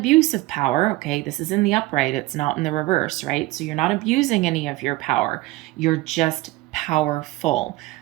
of power, okay? This is in the upright, it's not in the reverse, right? So you're not abusing any of your power. You're just powerful.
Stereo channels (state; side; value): quieter; left; 19.1 dB